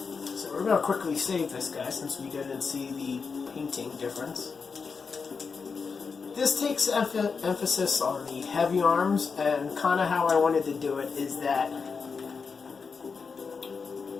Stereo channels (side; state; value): right; quieter; 5.2 dB